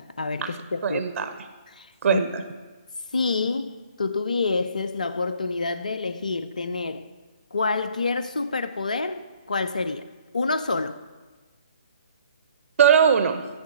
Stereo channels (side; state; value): both; inverted; correlation -0.60